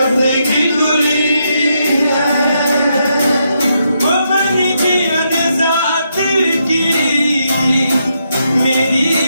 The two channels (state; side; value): inverted; both; correlation -0.80